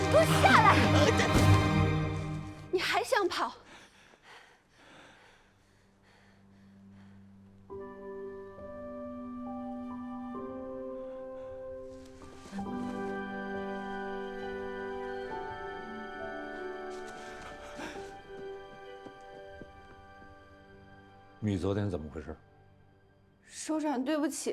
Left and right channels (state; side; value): identical; both; correlation 1.00